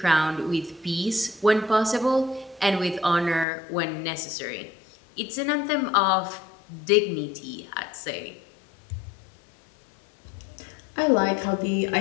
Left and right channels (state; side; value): drops out; right; at 3.5 s